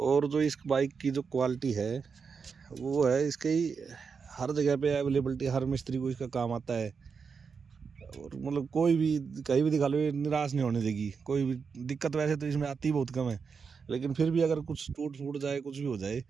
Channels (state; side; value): quieter; left; 5.7 dB